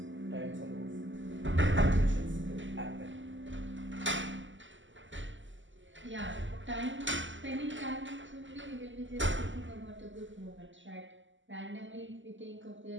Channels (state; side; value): late; left; 0.55 ms